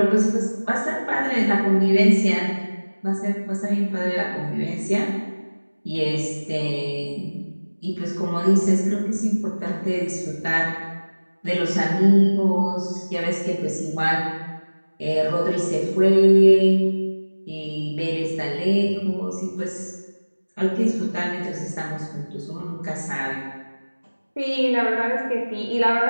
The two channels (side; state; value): both; inverted; correlation -1.00